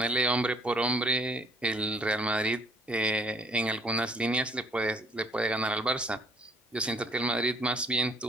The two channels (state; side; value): normal; both; correlation 0.61